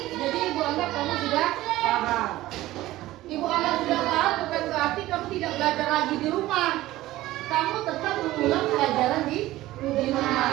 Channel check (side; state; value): left; quieter; 16.4 dB